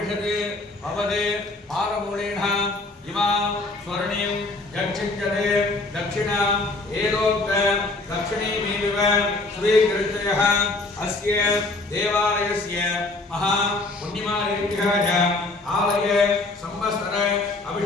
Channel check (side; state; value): right; quieter; 3.1 dB